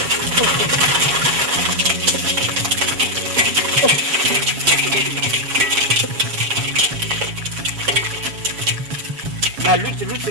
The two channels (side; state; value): left; late; 7.2 ms